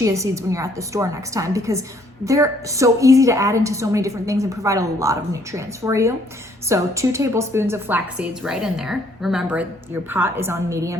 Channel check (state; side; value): normal; both; correlation 0.65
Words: seeds when you're at the store next time, because they're so easy to add into so many different things and provide a lot of nutrients for you. So 2 tablespoons of flax seeds right in there. Remember, your pot is on